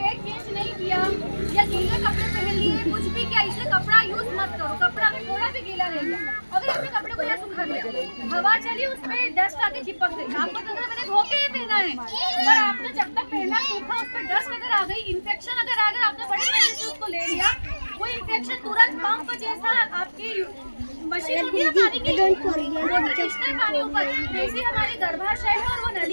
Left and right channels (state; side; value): inverted; both; correlation -1.00